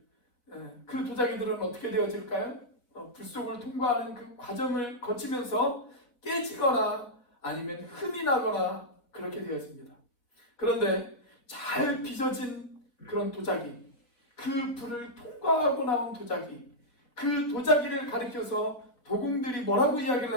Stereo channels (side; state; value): right; late; 4.3 ms